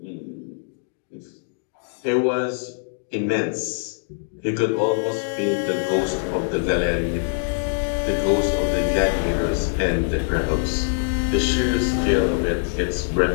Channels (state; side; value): silent; right; digital silence